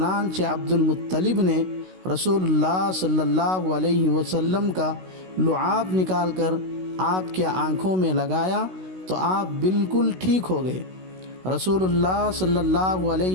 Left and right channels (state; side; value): late; left; 16 ms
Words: عبد المطلب نے رسول اللہ صلی اللہ علیہ وسلم کا لعاب نکال کر آپ کے آنکھوں میں لگایا تو آپ بالکل ٹھیک ہو گئے۔ رسول اللہ صلی اللہ